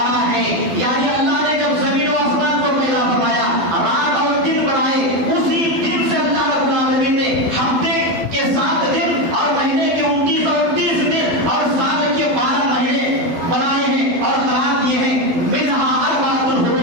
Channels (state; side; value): late; left; 12 ms